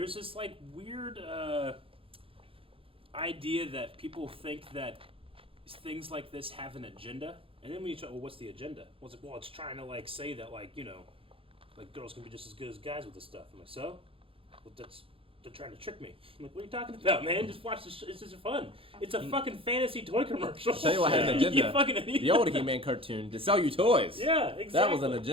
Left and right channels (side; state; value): left; late; 0.27 ms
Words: this like weird idea that people think that things like this have an agenda, and then when you try, well, what's the agenda? Well, it's trying to like say that like like girls can be just as good as guys with this stuff. I'm like, so? Well, they're trying to trick me. I'm like, what are you talking about, man? Just watch this. It's just fun. It's a fucking fantasy toy commercial. I'll tell you what had an You agenda. fucking The old He-Man cartoon to sell you toys. Yeah, exactly. That was an